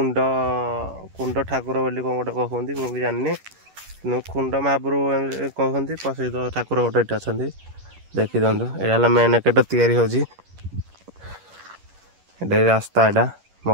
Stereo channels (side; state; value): left; late; 11 ms